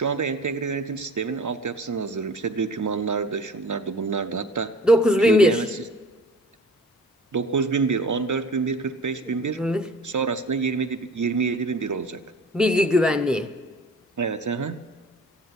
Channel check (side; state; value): both; normal; correlation 0.44